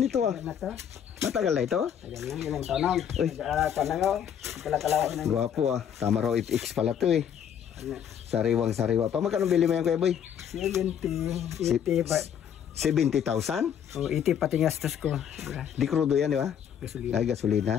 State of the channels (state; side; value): quieter; right; 8.8 dB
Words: ito ah. Na to. Matagal na ito? Ayan lang, ilang tanong. Uy. Tanong, pala-kalawa ng Gwapo ah. Tama raw FX pala to eh. Sariwang-sariwa pa. Magkano bili mo yan kuya boy? 70, 80 ba? 70,000? O, 80 pati gastos ko. Di crudo yan di ba? Gasolina. Ay,